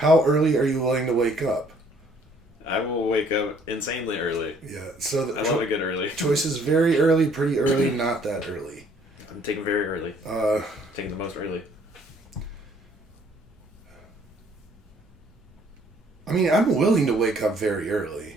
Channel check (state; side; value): normal; both; correlation 0.61